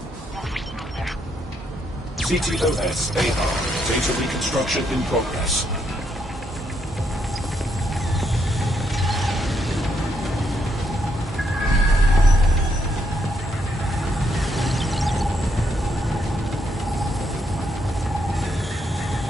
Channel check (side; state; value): both; normal; correlation 0.76